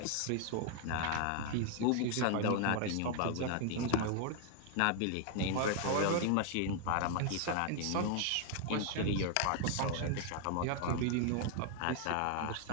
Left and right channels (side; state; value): both; different; correlation 0.00